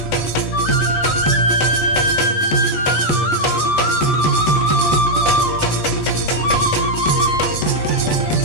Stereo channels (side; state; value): right; late; 19 ms